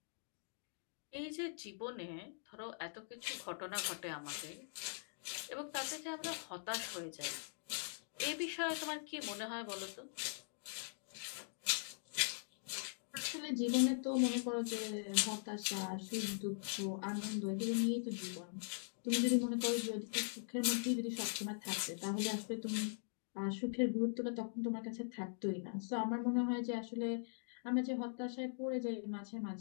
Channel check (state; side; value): silent; right; digital silence